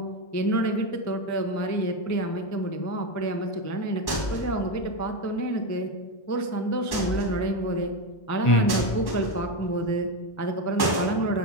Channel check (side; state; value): right; late; 1.1 ms